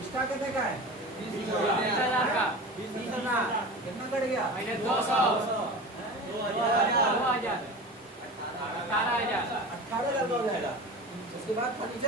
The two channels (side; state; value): both; normal; correlation 0.32